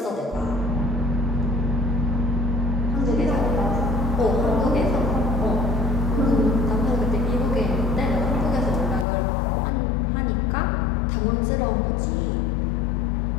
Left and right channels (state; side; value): drops out; right; at 9.1 s